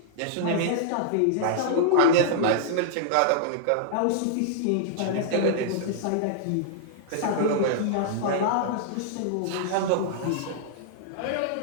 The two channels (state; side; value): different; both; correlation -0.01